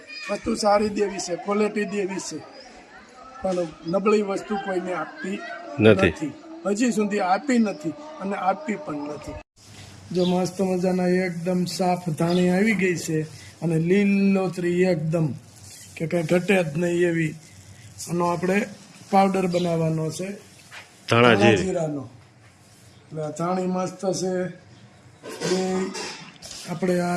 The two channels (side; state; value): both; identical; correlation 1.00